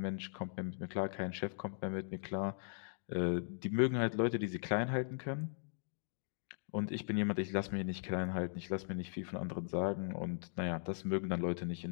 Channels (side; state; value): right; silent; digital silence